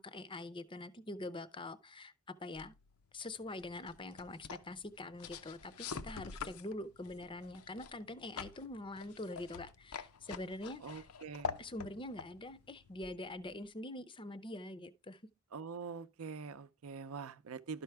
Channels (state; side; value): normal; both; correlation 0.26